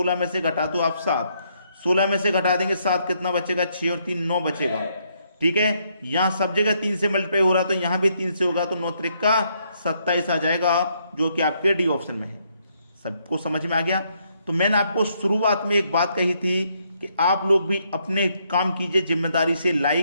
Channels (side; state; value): both; inverted; correlation -0.74